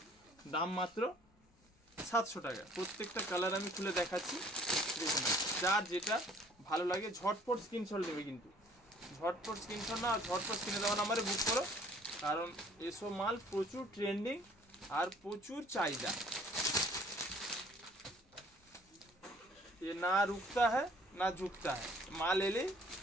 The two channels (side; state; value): both; normal; correlation 0.56